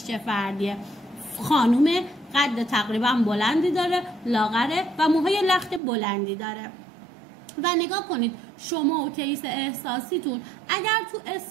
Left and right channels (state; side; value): drops out; left; at 5.8 s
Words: چه فردیه. خانوم قد تقریبا بلندی داره، لاغره و موهای لخت بلندی داره. و نگاه کنید شما و کیس احساسیتون اگر تو